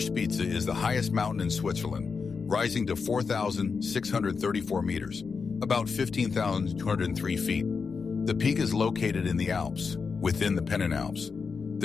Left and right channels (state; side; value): quieter; right; 5.2 dB